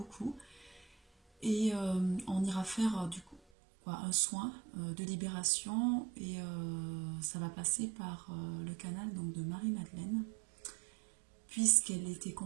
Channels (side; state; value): left; drops out; at 3.4 s